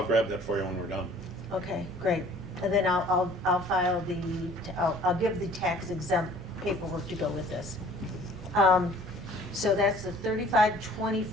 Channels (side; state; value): both; normal; correlation 0.52